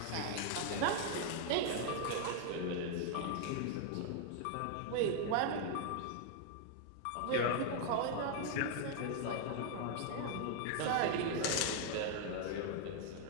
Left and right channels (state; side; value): different; both; correlation 0.00